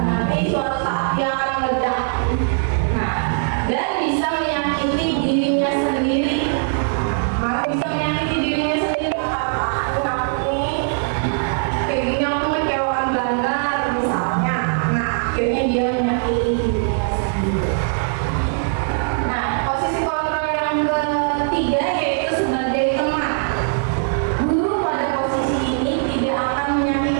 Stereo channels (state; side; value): silent; left; digital silence